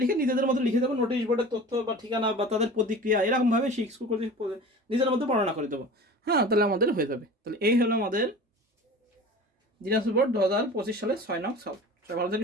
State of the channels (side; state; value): both; normal; correlation 0.38